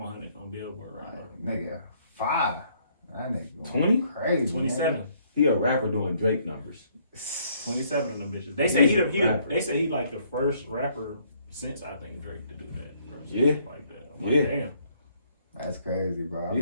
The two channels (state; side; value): inverted; both; correlation -0.66